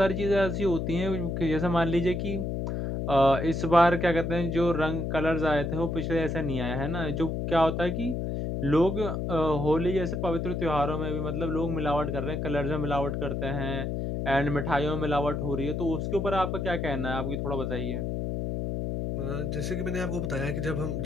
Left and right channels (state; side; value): noise; left; hum, 2 dB below the sound